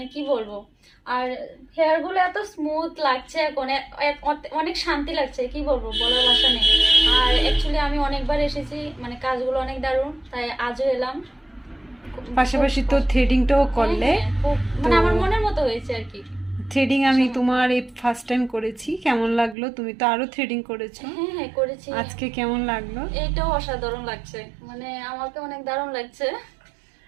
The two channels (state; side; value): drops out; left; at 19.6 s